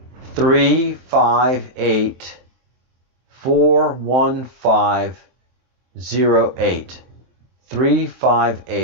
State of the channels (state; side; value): late; left; 23 ms